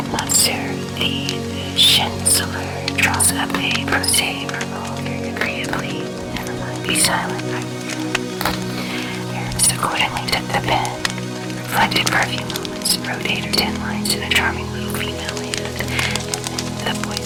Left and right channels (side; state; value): both; identical; correlation 1.00